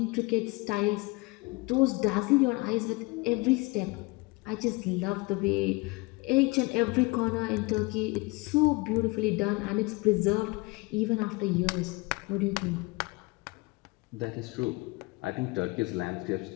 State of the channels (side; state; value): right; quieter; 25.1 dB